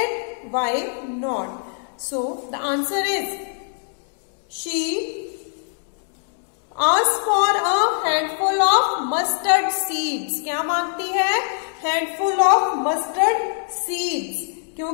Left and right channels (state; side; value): silent; right; 64 dB below the other